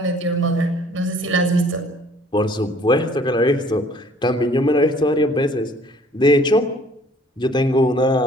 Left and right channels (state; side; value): normal; both; correlation 0.56